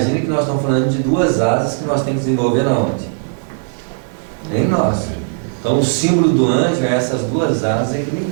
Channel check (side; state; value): left; silent; digital silence